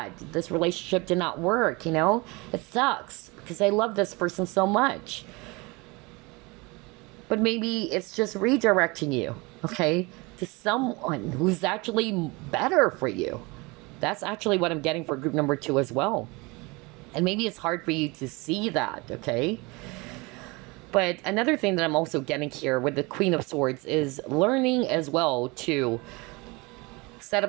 This relationship did not work, It sucks because I love this person so much. But maybe it's just redirecting you, okay, to someone who's actually better for you. That's actually what I'm getting for group number 2 as well. And maybe it's hard for you to see that, okay? But another thing that I'm also getting here with the Queen of Swords is learning as well to set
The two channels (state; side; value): quieter; left; 25.7 dB